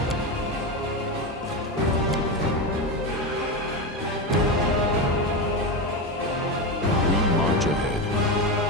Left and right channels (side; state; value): both; normal; correlation 0.16